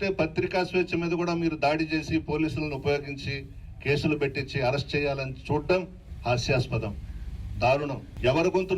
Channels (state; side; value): identical; both; correlation 1.00